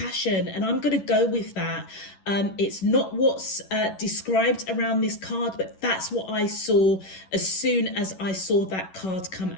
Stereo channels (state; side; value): late; right; 11 ms